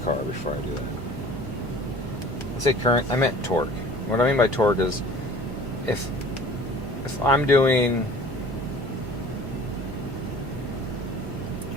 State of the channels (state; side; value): noise; right; hum, 10 dB below the sound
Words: car before I do that. I say current, I meant torque. What I mean by torque is if I'm doing